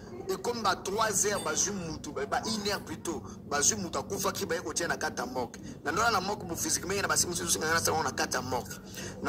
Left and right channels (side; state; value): both; identical; correlation 1.00